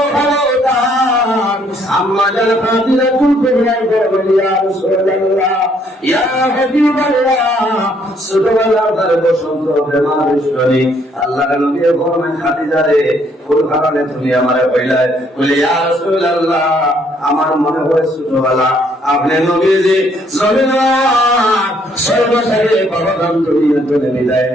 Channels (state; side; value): normal; both; correlation 0.67